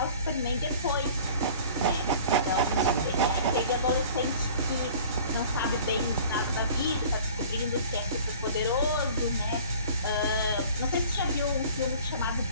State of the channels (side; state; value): both; inverted; correlation -0.46